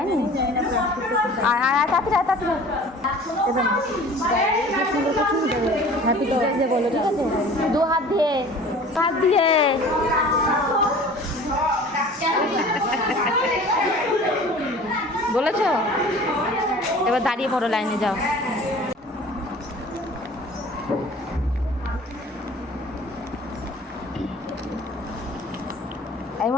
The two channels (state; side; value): normal; both; correlation 0.45